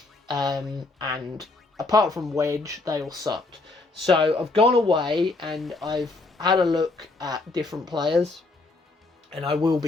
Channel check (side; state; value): right; quieter; 3.4 dB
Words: And apart from Wedge, they all sucked. So I've gone away and I've had a look at different players. and I will